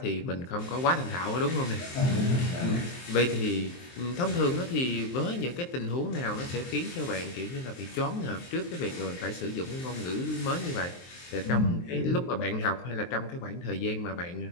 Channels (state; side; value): late; right; 23 ms